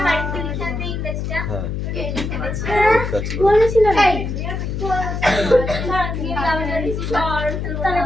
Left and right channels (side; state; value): left; noise; hum, 3 dB below the sound